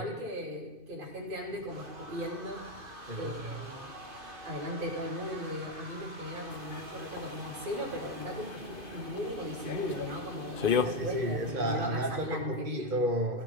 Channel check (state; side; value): late; left; 2.5 ms